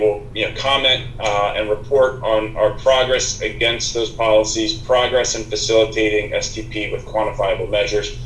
comment and report on our progress against those policies, progress in facilitating STP with quantifiable measures,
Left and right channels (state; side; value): identical; both; correlation 1.00